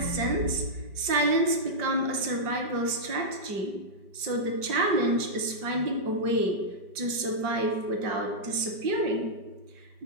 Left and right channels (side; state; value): left; late; 5.1 ms